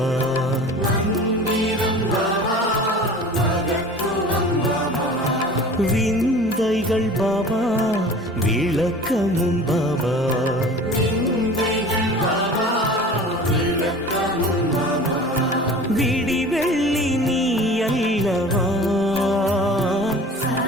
மந்திரம் பாபா மகத்துவம் பாபா, விந்தைகள் பாபா விளக்கமும் பாபா, விந்தைகள் பாபா விளக்கமும் பாபா. விடி வெள்ளி நீ அல்லவா.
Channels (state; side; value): normal; both; correlation 0.41